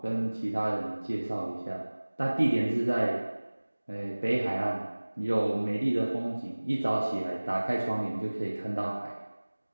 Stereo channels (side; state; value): both; inverted; correlation -1.00